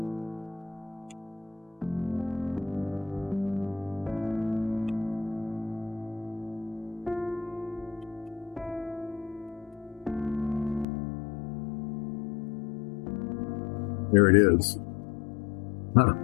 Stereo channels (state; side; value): drops out; right; at 10.9 s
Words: there it is. Huh.